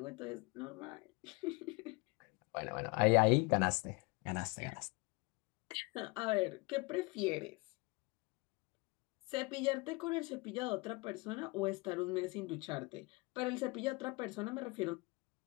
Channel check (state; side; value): quieter; right; 26.8 dB